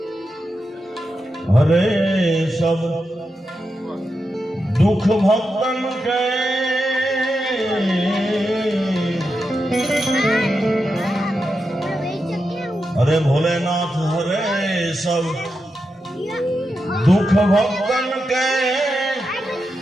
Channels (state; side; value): normal; both; correlation 0.88